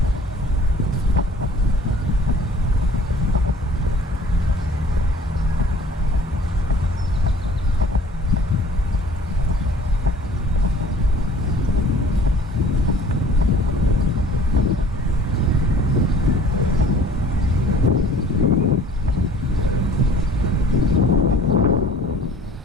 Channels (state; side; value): normal; both; correlation 0.50